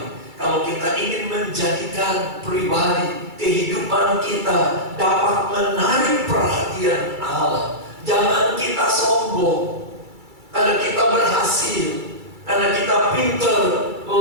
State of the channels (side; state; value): left; late; 2.3 ms